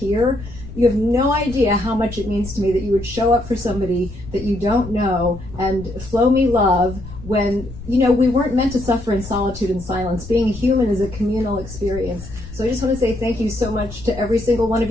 You have no idea how much it means to me that you would show up for somebody that you don't know and flow me love when, we weren't meant to suffer in solitude and silence. Being a human is a communal experience. So I just want to say thank you so much to every single one of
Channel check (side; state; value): left; noise; rumble, 14 dB below the sound